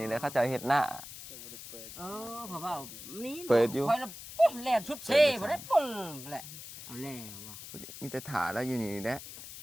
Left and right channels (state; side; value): noise; left; hiss, 13 dB below the sound